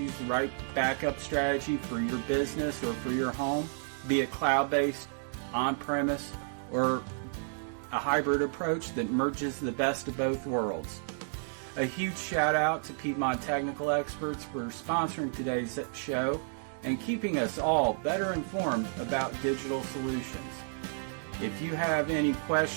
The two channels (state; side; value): silent; left; digital silence